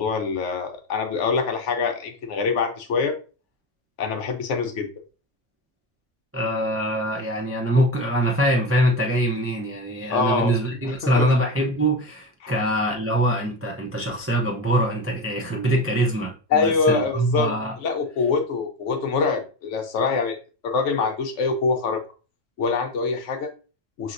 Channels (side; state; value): both; normal; correlation 0.18